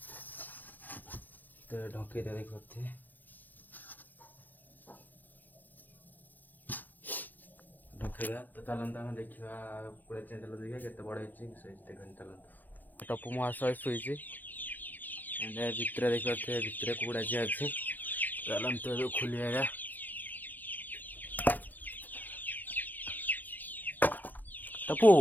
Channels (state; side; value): late; right; 0.085 ms